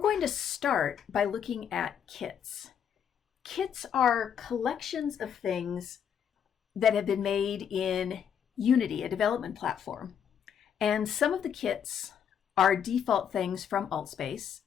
going to start by looking at kits. Kits are collections of things that have been made in Unity, a development platform. And some of the kits are default things from AltspaceVR.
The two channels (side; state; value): right; quieter; 8.2 dB